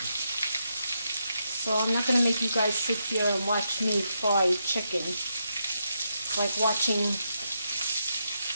So I'm not going to make you guys sit here and watch me fry chicken. It's like watching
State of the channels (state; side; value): inverted; both; correlation -0.82